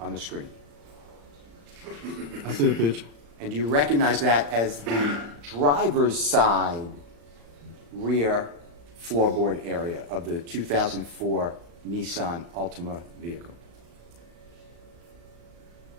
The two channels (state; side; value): late; left; 35 ms